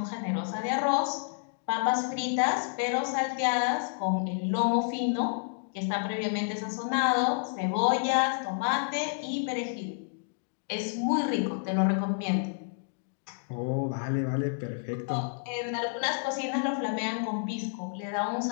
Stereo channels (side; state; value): right; silent; digital silence